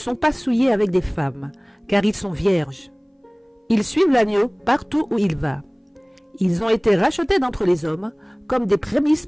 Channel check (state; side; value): identical; both; correlation 1.00